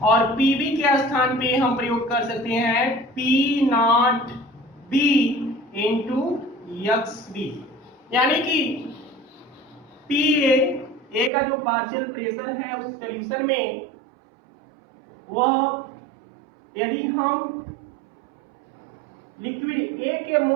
और PB के स्थान पे हम प्रयोग कर सकते हैं P not B into XB। यानी कि PA का जो पार्शियल प्रेशर है उस सॉल्यूशन में, वह यदि हम लिक्विड ए के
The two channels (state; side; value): drops out; left; at 11.3 s